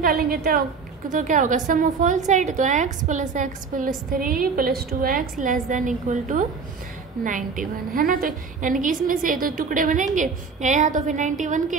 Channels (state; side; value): quieter; left; 5.1 dB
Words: तो क्या होगा? सम ऑफ ऑल साइड, तो x plus 3 plus 2x less than equal to 91 है ना। तो यानी कि इसमें से तो टुकड़े बनेंगे या तो फिर 91